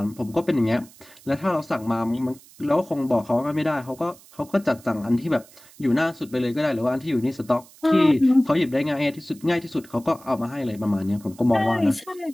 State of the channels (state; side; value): noise; right; hiss, 24 dB below the sound